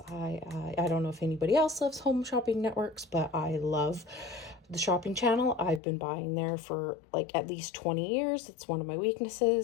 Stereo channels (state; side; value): drops out; right; at 5.8 s